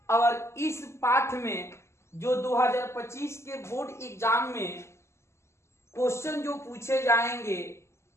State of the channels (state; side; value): late; right; 0.13 ms